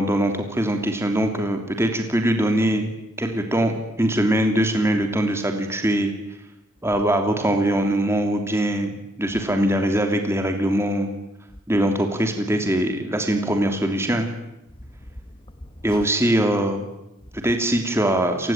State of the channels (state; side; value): normal; both; correlation 0.71